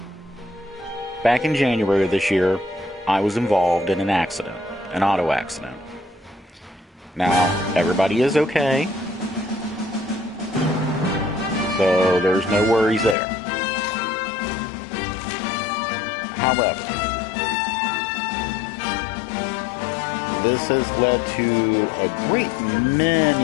in January of this year, I was involved in an accident, an auto accident. Now, everybody is okay, so there's no worries there. However, this has led to a great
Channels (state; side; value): drops out; right; at 13.2 s